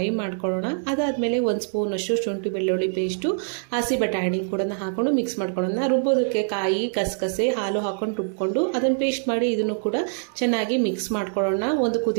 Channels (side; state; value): left; silent; digital silence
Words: ಮಾಡ್ಕೊಳ್ಳೋಣ. ಅದಾದಮೇಲೆ 1 ಸ್ಪೂನ್ ಅಷ್ಟು ಶುಂಠಿ ಬೆಳ್ಳುಳ್ಳಿ ಪೇಸ್ಟು, ಹಸಿ ಬಟಾಣಿ ಕೂಡ ಹಾಕೊಂಡು ಮಿಕ್ಸ್ ಮಾಡ್ಕೊಳ್ಳೋಣ. ರುಬ್ಬೋದಕ್ಕೆ ಕಾಯಿ, ಕಸಕಸೆ, ಹಾಲು ಹಾಕೊಂಡು ರುಬ್ಕೊಂಡು ಅದನ್ನು ಪೇಸ್ಟ್ ಮಾಡಿ ಇದನ್ನು ಕೂಡ ಚೆನ್ನಾಗಿ ಮಿಕ್ಸ್ ಮಾಡ್ಕೊಳ್ಳೋಣ ಒಂದು